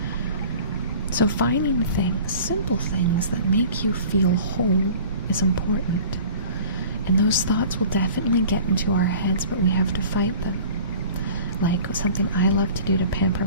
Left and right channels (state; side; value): inverted; both; correlation -0.45